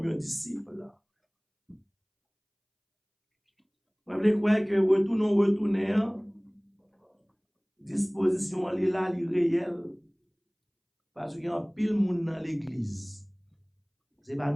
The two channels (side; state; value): both; identical; correlation 1.00